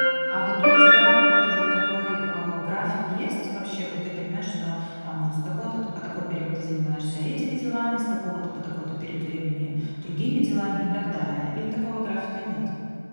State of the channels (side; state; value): both; inverted; correlation -1.00